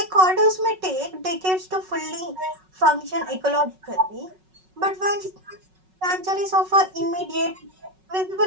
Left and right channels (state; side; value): late; left; 5.4 ms